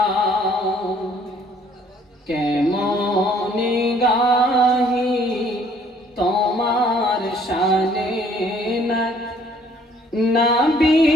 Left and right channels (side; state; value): both; normal; correlation 0.60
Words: কেমন গাহি তোমার শানে না নবী